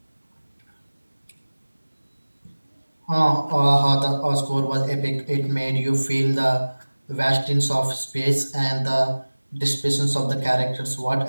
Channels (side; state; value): both; inverted; correlation -1.00